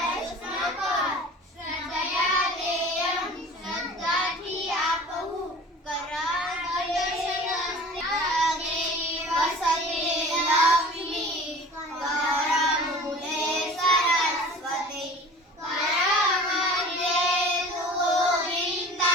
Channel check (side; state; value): both; normal; correlation 0.42